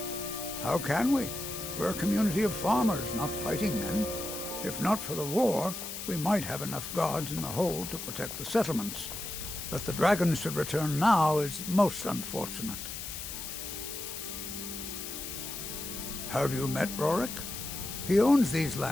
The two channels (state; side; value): noise; left; hiss, 7 dB below the sound